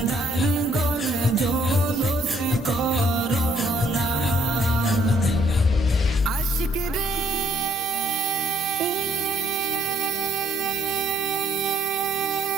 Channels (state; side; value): normal; both; correlation 0.66